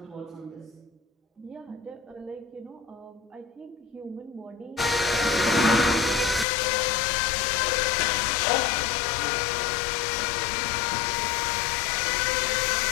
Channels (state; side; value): drops out; right; at 6.5 s